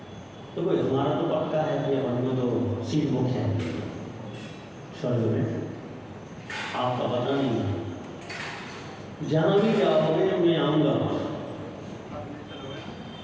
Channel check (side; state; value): both; identical; correlation 1.00